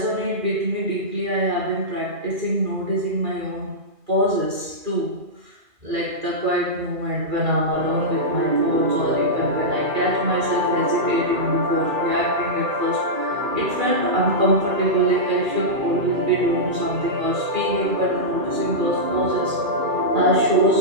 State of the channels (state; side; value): late; left; 2.4 ms